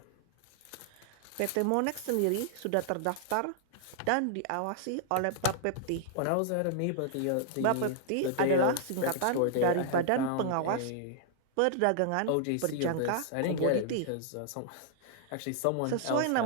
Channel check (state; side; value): different; both; correlation -0.01